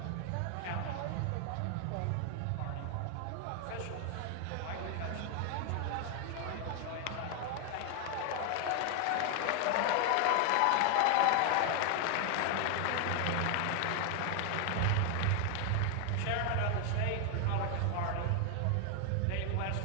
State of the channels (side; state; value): both; different; correlation 0.00